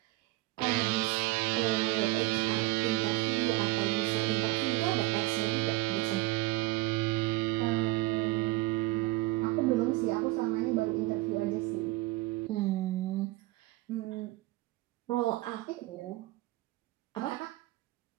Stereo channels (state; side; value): quieter; left; 20.1 dB